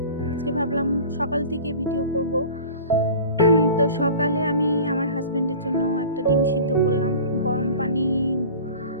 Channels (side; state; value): both; inverted; correlation -0.40